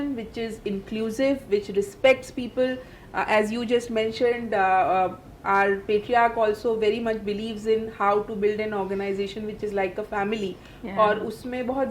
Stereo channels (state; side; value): identical; both; correlation 1.00